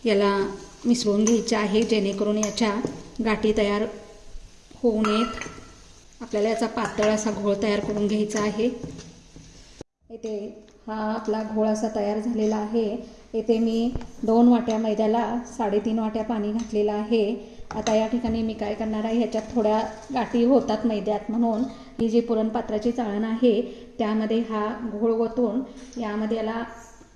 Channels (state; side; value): identical; both; correlation 1.00